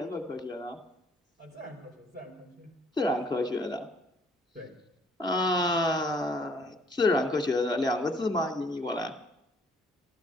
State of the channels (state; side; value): normal; both; correlation 0.62